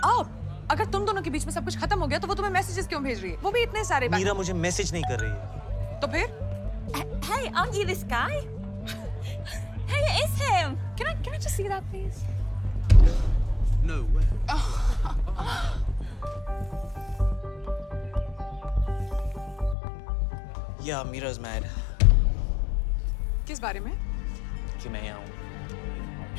up! अगर तुम दोनों के बीच में सब कुछ खत्म हो गया, तो वो तुम्हें मैसेजेस क्यों भेज रही है? वो भी इतने सारे. मीरा मुझे मैसेज नहीं कर रही है. तो फिर? Hey, aren't you this guy? Hey, it is him. Can I just see that, please? No way. Yeah, Meera's mad. किस बारे में? कि मैं यहाँ हूँ.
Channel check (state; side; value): drops out; right; at 19.8 s